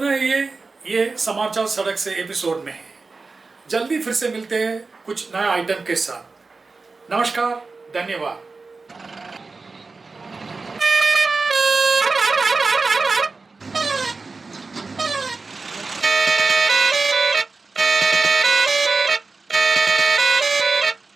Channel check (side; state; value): left; quieter; 4.0 dB